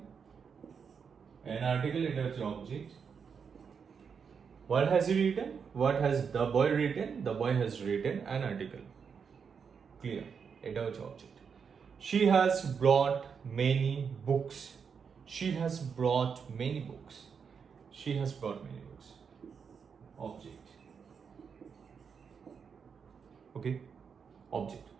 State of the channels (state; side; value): quieter; left; 6.3 dB